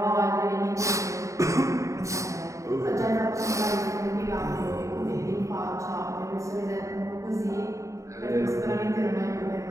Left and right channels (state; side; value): late; left; 0.15 ms